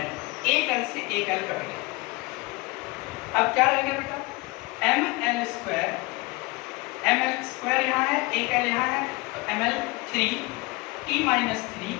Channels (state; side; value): quieter; right; 24.6 dB